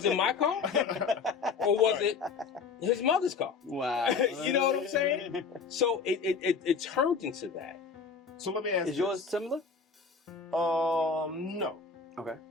it my car? Or was it his mother's car? Wow. You know what I'm saying? So it turned into that. So let me ask Is yours similar? No. Okay.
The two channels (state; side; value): quieter; right; 5.2 dB